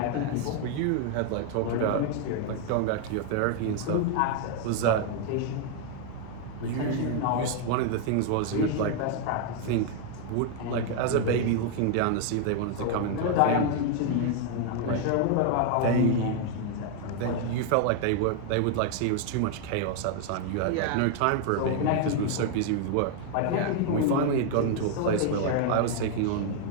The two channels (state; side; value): different; both; correlation 0.00